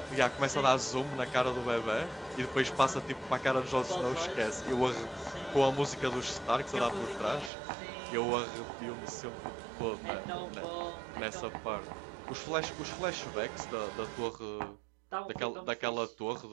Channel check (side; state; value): left; drops out; at 7.5 s